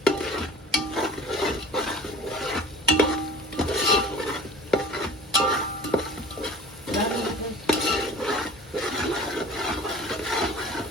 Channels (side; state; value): both; normal; correlation 0.42